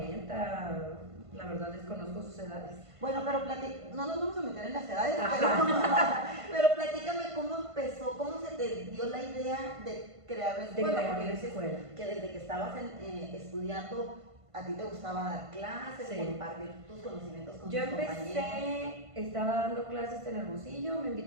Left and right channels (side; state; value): left; late; 1.5 ms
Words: la verdad desconozco sus edades. Bueno, pero no nos vamos a meter en las edades, pero platícame cómo empezó, cómo se te dio la idea de crear la escuela. Porque dices que desde que estabas estudiando, a ti te gustaba dar clases, compartir tus conocimientos con tus compañeros. Estaba dando clases en Hermosillo, me